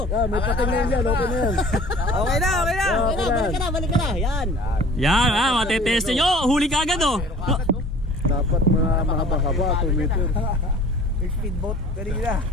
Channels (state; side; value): normal; both; correlation 0.48